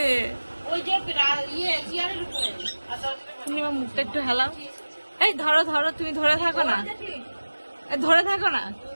ওই যে তুমি আমার মুখটা একটু হেলাও। এই ধরো ধরো, তুমি ধরে থাকো না, ধরে থাকো না,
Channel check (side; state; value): both; inverted; correlation -1.00